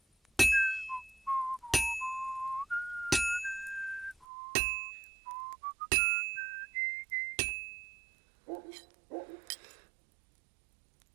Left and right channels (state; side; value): drops out; left; at 4.2 s